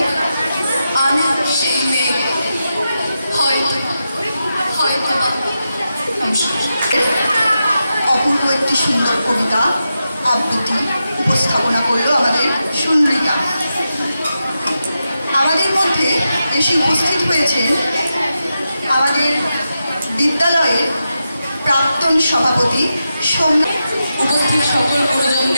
আমি সেই মেয়ে, হয়তো বা অপূর্ব একটি সুন্দর কবিতা আবৃত্তি উপস্থাপনা করলো আমাদের সুন্দরিকা। আমাদের মধ্যে এসে উপস্থিত হয়েছেন আমাদের বিদ্যালয়ের প্রাক্তন সভাপতি সোমনাথ। উপস্থিত সকল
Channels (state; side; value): inverted; both; correlation -0.88